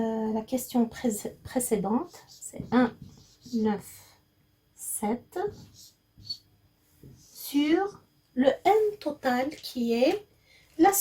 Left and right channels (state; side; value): identical; both; correlation 1.00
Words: question précédente, c'est 1, 9, 7 sur le N total qui est la